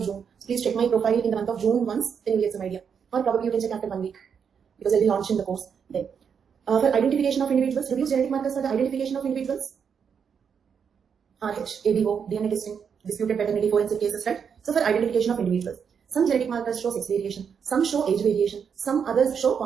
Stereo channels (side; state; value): left; quieter; 6.9 dB